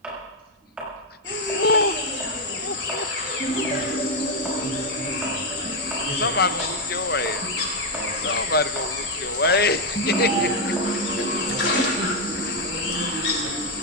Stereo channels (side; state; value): both; normal; correlation 0.02